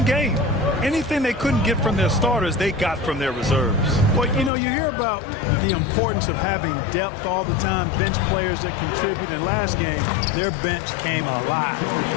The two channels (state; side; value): drops out; right; at 4.5 s